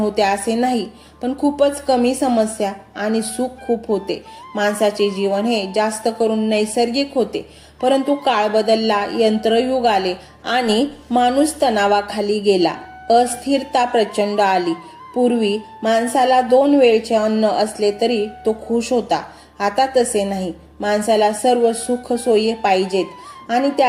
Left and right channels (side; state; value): both; identical; correlation 1.00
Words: असे नाही, पण खूपच कमी समस्या आणि सुख खूप होते. माणसाचे जीवन हे जास्त करून नैसर्गिक होते. परंतु काळ बदलला, यंत्रयुग आले आणि माणूस तणावाखाली गेला. अस्थिरता प्रचंड आली. पूर्वी माणसाला 2 वेळचे अन्न असले तरी तो खुश होता. आता तसे नाही. माणसाला सर्व सुख सोयी पाहिजेत आणि